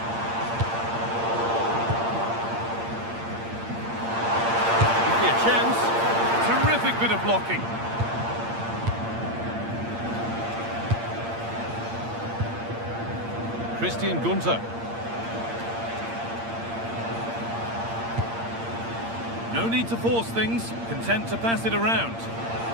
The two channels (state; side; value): late; left; 8.7 ms